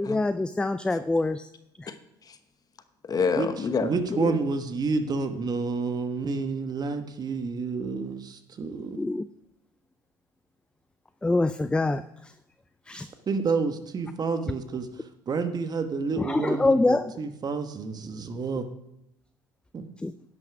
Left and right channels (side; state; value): both; normal; correlation 0.78